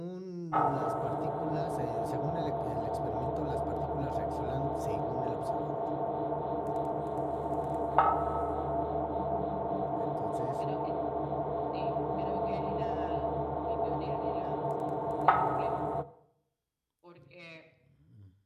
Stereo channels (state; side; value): identical; both; correlation 1.00